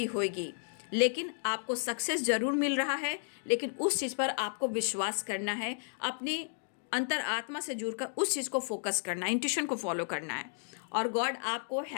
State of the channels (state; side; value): silent; right; digital silence